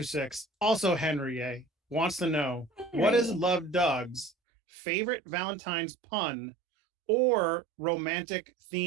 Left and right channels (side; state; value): left; drops out; at 4.3 s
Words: also Henry A, wants to know what is Henry. Love Doug's favorite Valentine's pun or romantic